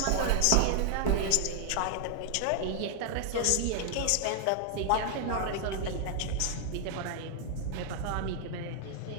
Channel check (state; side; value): different; both; correlation 0.00